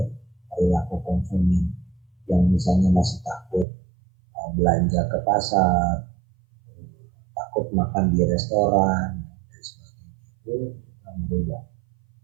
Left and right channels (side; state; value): left; drops out; at 3.7 s